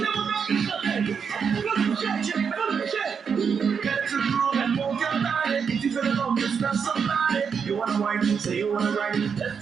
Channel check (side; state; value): left; quieter; 6.4 dB